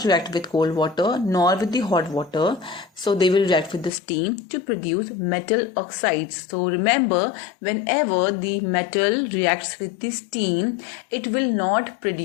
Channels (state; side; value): drops out; right; at 3.9 s